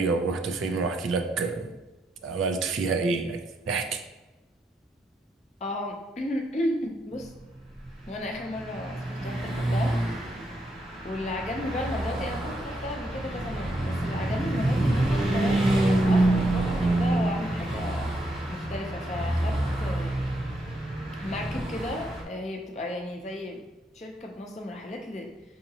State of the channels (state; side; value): normal; both; correlation 0.78